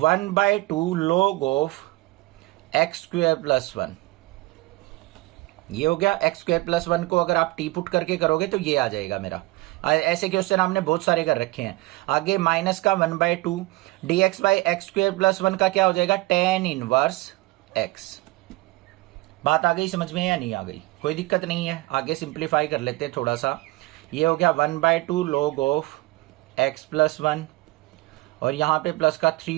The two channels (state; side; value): quieter; left; 20.4 dB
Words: log of x square plus 1। ये हो गया, एक्स स्क्वायर प्लस 1 को अगर आप टी पुट करके करोगे तो ये आ जाएगा मेरा। ऐसे क्वेश्चन हमने बहुत सारे कर रखे हैं। आगे माइनस का 1/2 dx by x square plus 1 का क्या हो जाएगा tan इनवर्स x। बात आ गई समझ में या नहीं आ गई, कोई दिक्कत नहीं है। आगे सिंप्लीफाई कर लेते हैं थोड़ा सा, ये हो गया 1/2 log ऑफ x प्लस 1, और यहाँ पे प्लस का